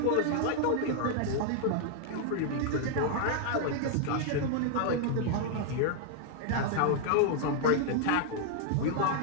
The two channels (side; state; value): both; different; correlation -0.01